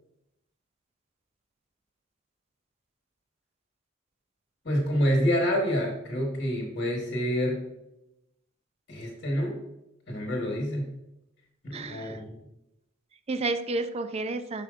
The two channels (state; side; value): normal; both; correlation 0.63